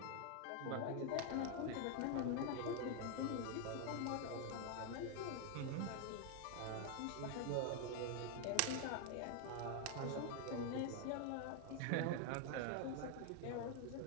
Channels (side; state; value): both; different; correlation 0.00